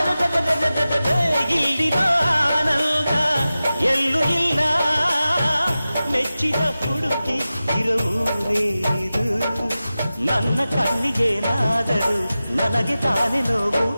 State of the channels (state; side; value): inverted; both; correlation -0.95